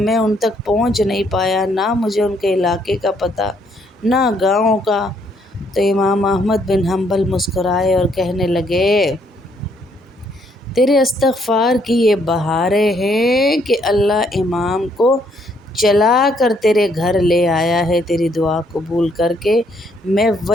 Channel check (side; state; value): both; normal; correlation 0.69